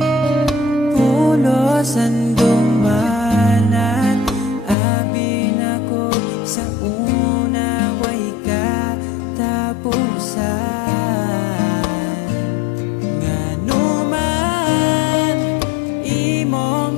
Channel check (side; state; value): right; drops out; at 4.8 s